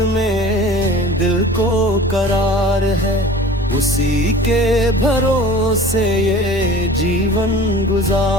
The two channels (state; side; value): normal; both; correlation 0.42